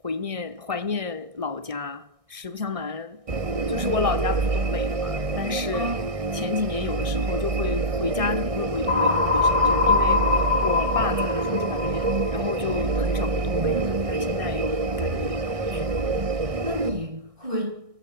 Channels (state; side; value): late; left; 1.6 ms